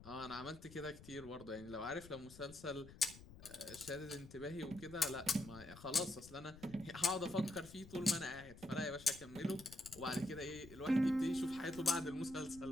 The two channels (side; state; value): left; noise; rumble, 17 dB below the sound